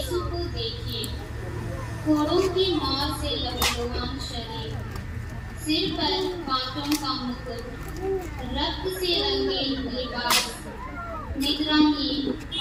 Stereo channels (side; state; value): both; identical; correlation 1.00